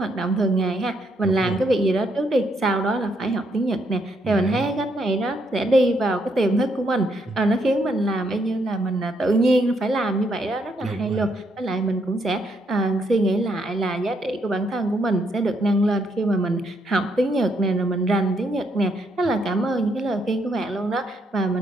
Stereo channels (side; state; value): both; normal; correlation 0.75